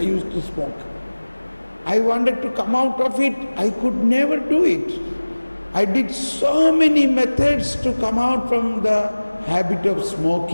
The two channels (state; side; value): inverted; both; correlation -1.00